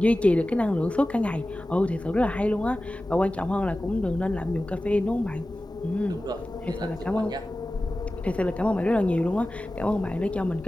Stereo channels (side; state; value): both; normal; correlation 0.96